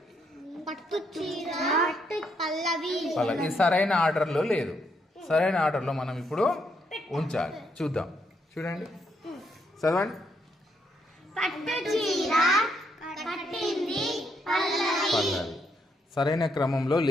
ఇది సరైన ఆర్డర్లో లేదు. సరైన ఆర్డర్లో మనం ఇప్పుడు ఉంచాలి. చూద్దాం. చూడండి, చదవండి. పల్లవి సరైన క్రమంలో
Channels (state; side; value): normal; both; correlation 0.75